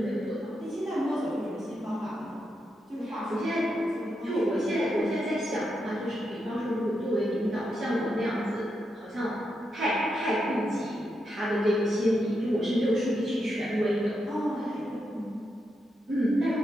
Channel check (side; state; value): both; normal; correlation 0.84